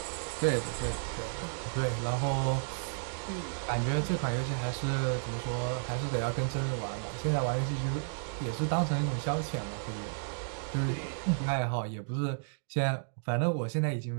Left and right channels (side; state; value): left; silent; digital silence